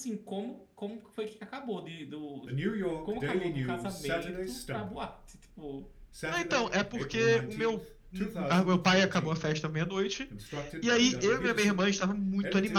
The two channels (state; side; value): identical; both; correlation 1.00